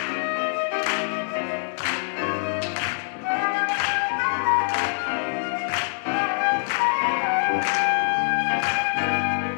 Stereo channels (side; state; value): right; silent; 61 dB below the other